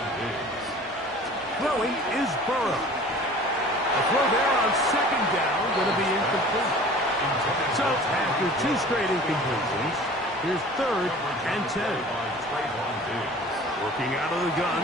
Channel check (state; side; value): normal; both; correlation 0.44